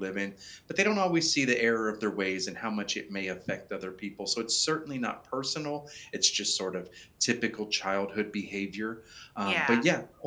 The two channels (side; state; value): both; identical; correlation 1.00